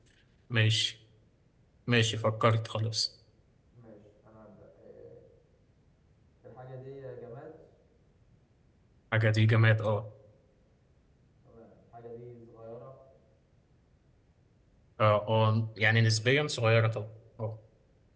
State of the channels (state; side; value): identical; both; correlation 1.00